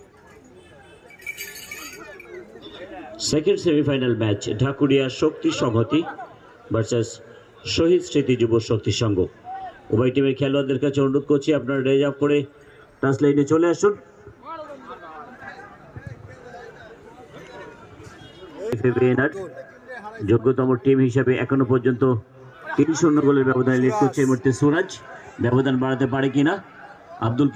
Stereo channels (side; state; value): both; identical; correlation 1.00